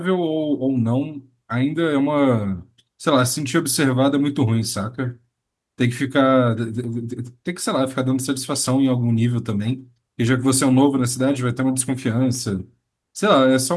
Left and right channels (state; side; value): identical; both; correlation 1.00